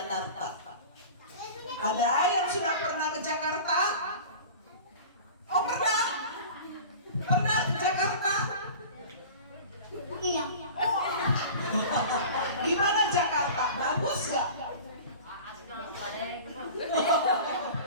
Ada yang sudah pernah ke Jakarta? Oh, pernah? Pernah ke Jakarta? Iya. Oh. Gimana Jakarta? Bagus gak?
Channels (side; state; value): both; inverted; correlation -0.38